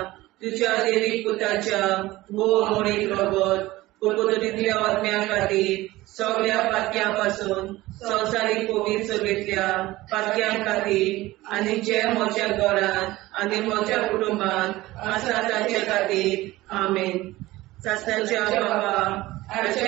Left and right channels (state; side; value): quieter; left; 18.2 dB